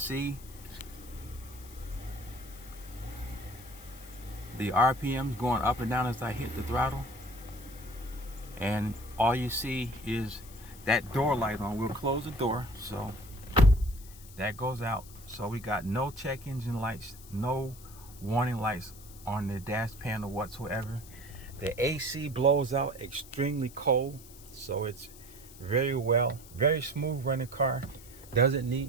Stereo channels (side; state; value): left; noise; hiss, 19 dB below the sound